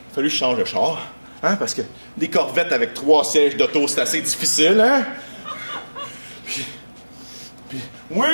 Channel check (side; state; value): both; inverted; correlation -1.00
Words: a fallu que je change de char, hein, parce que des Corvettes avec 3 sièges d'auto, c'est assez difficile, hein. Puis oui,